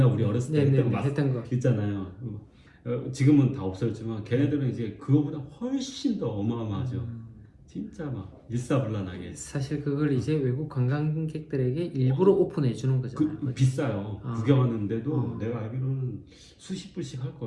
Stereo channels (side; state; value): both; identical; correlation 1.00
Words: 우리 어렸을 때 네네 했던 거 했던 거. 있잖아요. 지금은 다 없어졌지만 걔네들은 이제 그거보다 훨씬 더 어마어마하죠. 진짜 막 일사불란하게. 사실 그걸 이제 외국 관광객들에게 일부러 오픈해 주는 거잖아요. 비싸요. 구경하는데도 내가 알기로는 수십 불씩 할